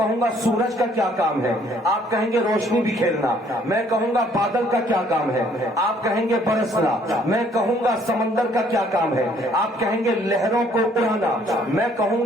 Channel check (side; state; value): both; normal; correlation 0.62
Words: گا سورج کا کیا کام ہے؟ آپ کہیں گے روشنی بکھیرنا۔ میں کہوں گا بادل کا کیا کام ہے؟ آپ کہیں گے برسنا۔ میں کہوں گا سمندر کا کیا کام ہے؟ آپ کہیں گے لہروں کو اڑانا۔ میں کہوں